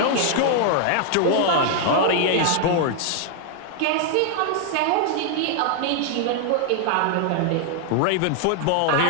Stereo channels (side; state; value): both; different; correlation 0.00